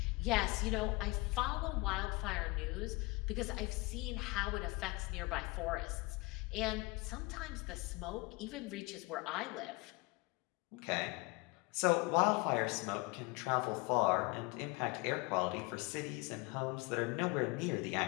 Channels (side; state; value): right; quieter; 24.5 dB